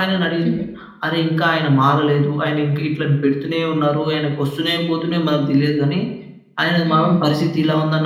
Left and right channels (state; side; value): identical; both; correlation 1.00